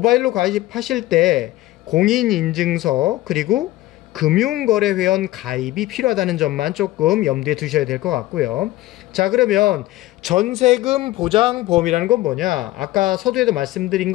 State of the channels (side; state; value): right; quieter; 17.0 dB